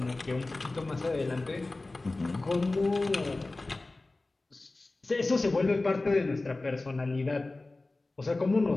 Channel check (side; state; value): right; quieter; 3.1 dB